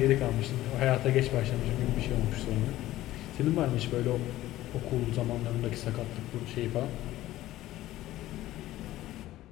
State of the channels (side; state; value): right; quieter; 15.3 dB